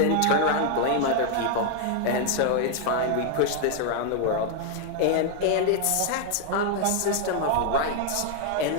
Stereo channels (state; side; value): different; both; correlation 0.00